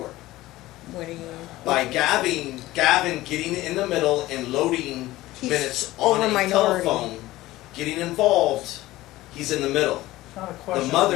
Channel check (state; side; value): quieter; right; 17.2 dB